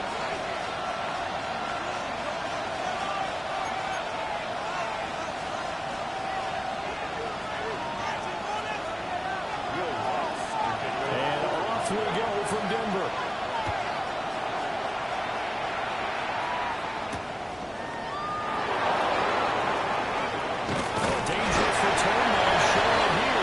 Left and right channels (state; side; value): identical; both; correlation 1.00